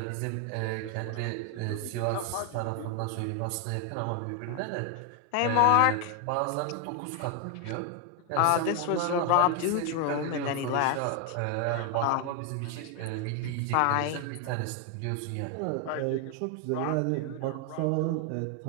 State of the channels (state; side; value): different; both; correlation 0.01